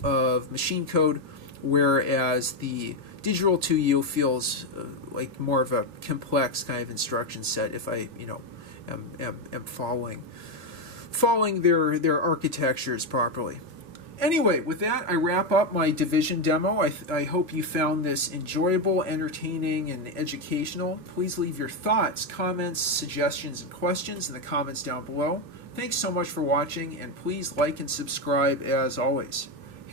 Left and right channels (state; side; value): late; left; 3.0 ms